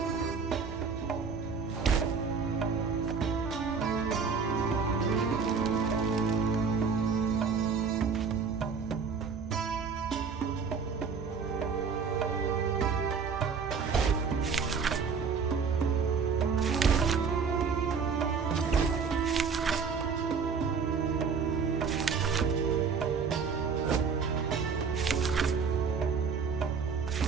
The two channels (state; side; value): quieter; left; 5.6 dB